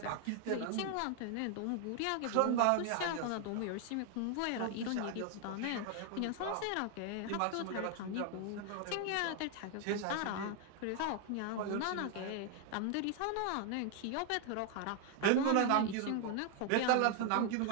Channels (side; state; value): both; different; correlation 0.00